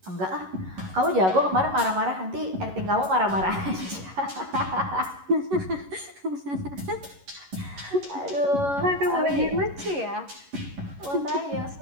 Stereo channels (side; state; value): left; late; 11 ms